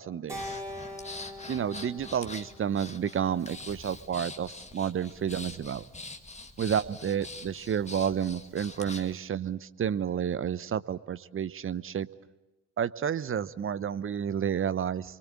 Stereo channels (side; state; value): left; quieter; 7.5 dB